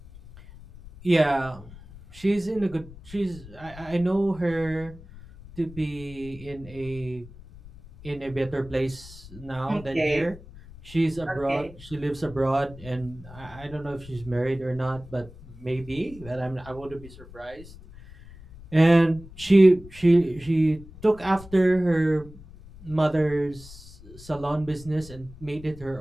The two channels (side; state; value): left; noise; rumble, 18 dB below the sound